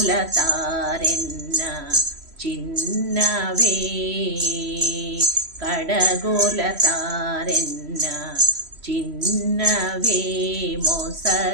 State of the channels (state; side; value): late; left; 3.0 ms